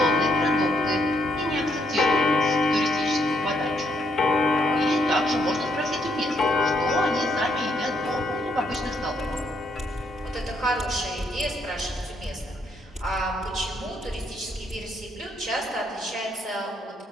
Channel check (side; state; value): both; normal; correlation 0.74